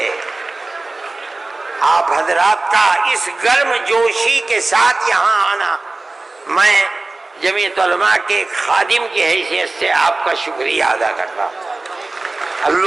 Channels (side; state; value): left; quieter; 3.2 dB